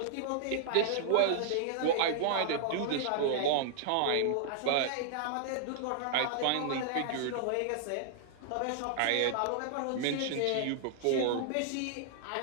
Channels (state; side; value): different; both; correlation -0.01